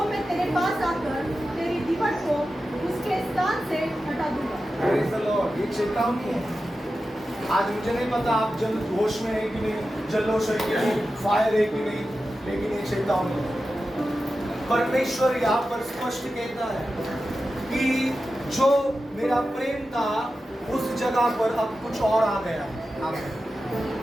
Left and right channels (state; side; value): normal; both; correlation 0.92